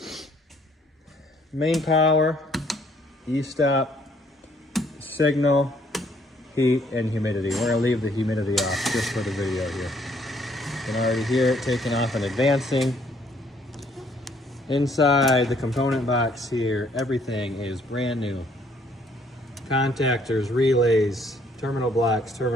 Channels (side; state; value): both; normal; correlation 0.65